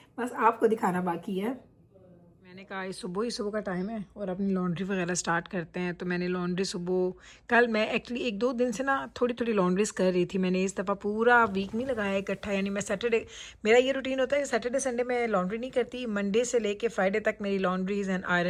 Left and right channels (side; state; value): both; identical; correlation 1.00